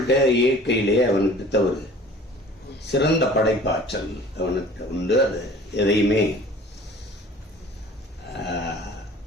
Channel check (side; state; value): both; normal; correlation 0.46